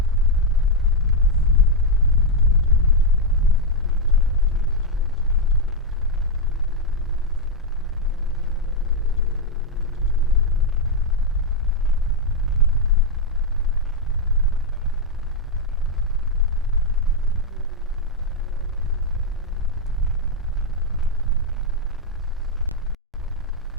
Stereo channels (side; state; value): both; normal; correlation 0.01